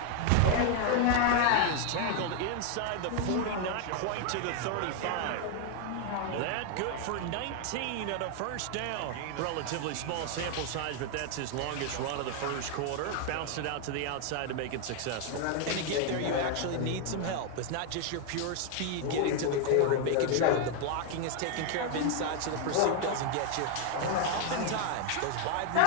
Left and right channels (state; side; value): different; both; correlation 0.01